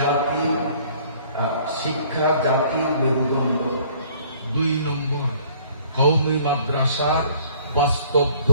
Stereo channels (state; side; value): inverted; both; correlation -0.56